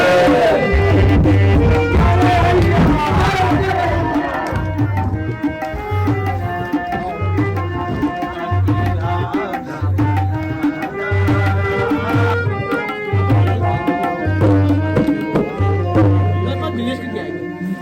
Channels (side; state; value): both; identical; correlation 1.00